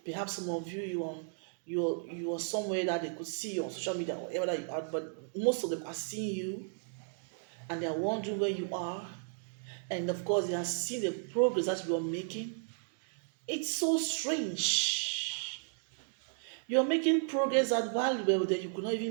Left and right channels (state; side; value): silent; left; digital silence